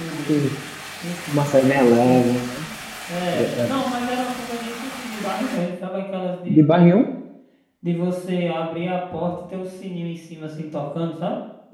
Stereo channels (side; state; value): both; identical; correlation 1.00